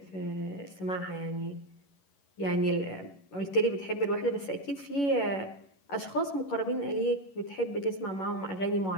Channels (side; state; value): right; late; 11 ms